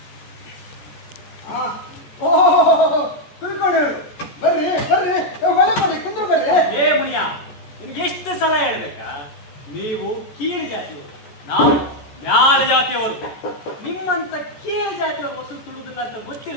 ತಿಳ್ಕೊಂಡು ಬರ್ರಿ ಬರ್ರಿ ಒಳ್ಳೆ ಬರ್ರಿ ಕುಂದ್ರು ಬರ್ರಿ. ಏ ಮುನಿಯ, ನಿಮ್ಗೆ ಎಷ್ಟು ಸಲ ಹೇಳ್ಬೇಕಾ? ನೀವು ಕೀಳು ಜಾತಿಯವರು, ನಾವು ಮ್ಯಾಲ ಜಾತಿಯವರು. ನಿಮ್ಮಂತ ಕೀಳು ಜಾತಿಯವರು ವಸೂಲು ತುಳಿದಿಲ್ಲ ಅಂತ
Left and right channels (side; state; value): right; late; 14 ms